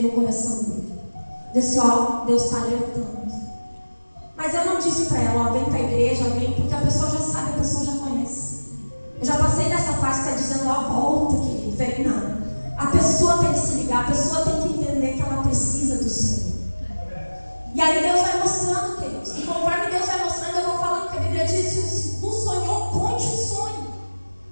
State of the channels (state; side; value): inverted; both; correlation -1.00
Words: no coração dele. Eu disse, ó, Deus está alertando. Mas eu não disse para ela, ó, vem para a igreja, vem, porque a pessoa já sabe, a pessoa já conhece. Eu já passei dessa fase que está dizendo, ó, volta, querido, vem, não. A pessoa tem que se ligar, a pessoa tem que entender que ela precisa do Senhor. E aí Deus vai mostrando, queridos. E conforme Deus vai mostrando, eu vou falando que a Bíblia diz, se tu sonhou, conte o sonho.